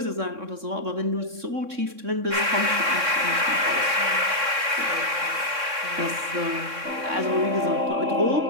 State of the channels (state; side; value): late; left; 3.6 ms